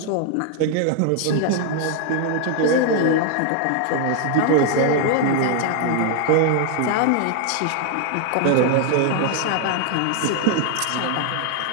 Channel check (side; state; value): both; different; correlation 0.00